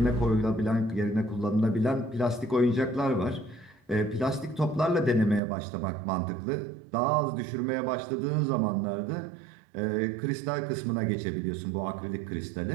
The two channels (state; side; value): drops out; left; at 5.4 s